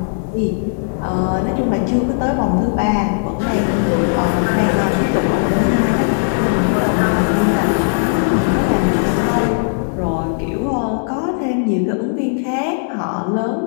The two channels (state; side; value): silent; right; digital silence